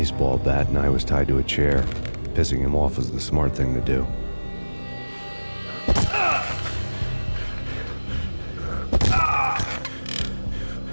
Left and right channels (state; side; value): inverted; both; correlation -1.00